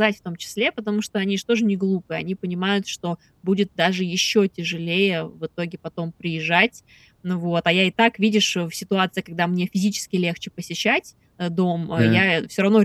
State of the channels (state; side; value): identical; both; correlation 1.00